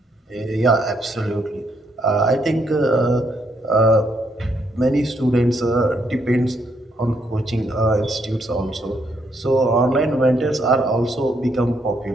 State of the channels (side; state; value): both; normal; correlation 0.74